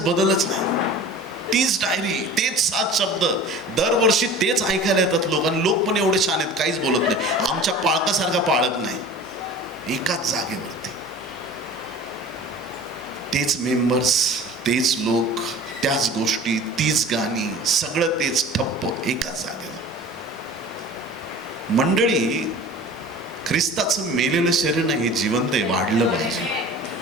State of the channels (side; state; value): both; normal; correlation 0.41